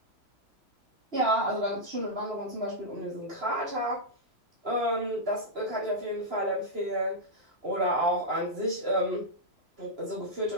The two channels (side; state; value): left; late; 3.0 ms